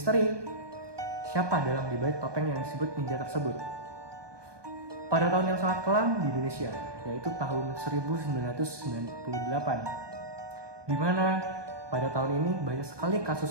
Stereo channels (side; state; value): left; late; 1.2 ms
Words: siapa dalam dibalik topeng yang disebut ninja tersebut. Pada tahun yang sangat kelam di Indonesia, yaitu tahun 1998, di mana pada tahun ini banyak sekali